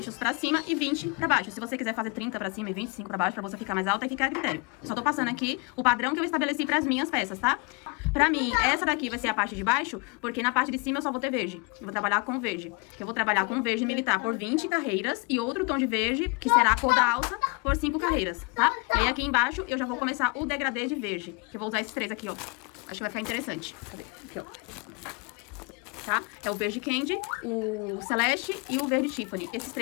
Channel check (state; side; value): quieter; right; 29.3 dB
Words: pra cima e 20 pra baixo. Se você quiser fazer 30 pra cima e 25 pra baixo, pra você ficar mais alta, aí fica a critério. Só tô passando aqui o padrão que eu estabeleci pras minhas peças, tá? Pra mim, essa daqui vai ser a parte de baixo, porque na parte de cima eu só vou ter verde. Eu vou trabalhar com verde. Eu vou trabalhar com verde militar por 20 carreiras e outro tom de verde, que será a cor da alça, por 5 carreiras, tá? E aí aqui embaixo eu já vou começar o degradê de verde, que eu vou usar esses 3 aqui, ó. Acho que vai ficar interessante. Cadê? Aqui, ó. Tá? É o verde candy, o celeste e o verde Tiffany. Esses